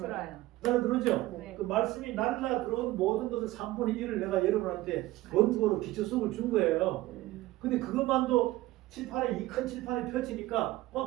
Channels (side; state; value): left; quieter; 17.3 dB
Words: 날라 들어오죠? 네. 그 말씀이 날라 들어온 모든 것을 3분의 1을 내가 여러분한테 원고로 기초수업을 준 거예요. 근데 그것만도 칠판에 이 큰 칠판에 펼치니까